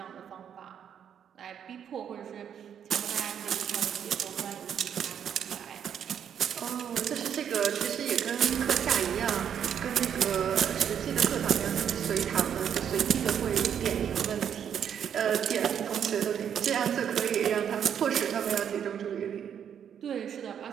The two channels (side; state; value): left; quieter; 8.6 dB